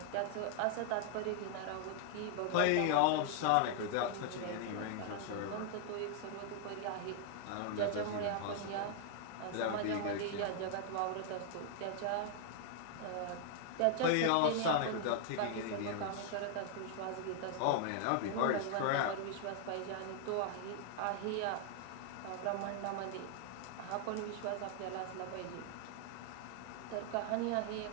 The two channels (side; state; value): both; different; correlation 0.00